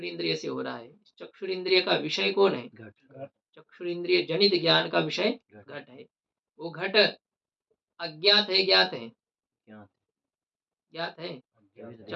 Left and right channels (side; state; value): both; identical; correlation 1.00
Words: से हो रहा है। चक्षुरिंद्रिय का विषय कौन है? घट। चक्षुरिंद्रिय जनित ज्ञान का विषय घट है। वो घट अज्ञात है ज्ञात है? ज्ञात है।